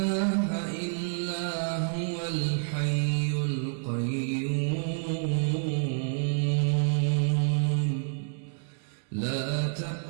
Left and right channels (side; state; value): left; silent; 59 dB below the other